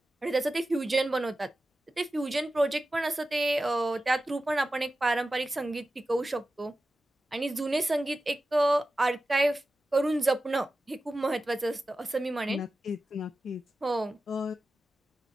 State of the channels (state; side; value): normal; both; correlation 0.94